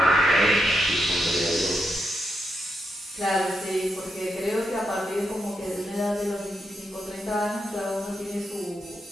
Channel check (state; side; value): normal; both; correlation 0.83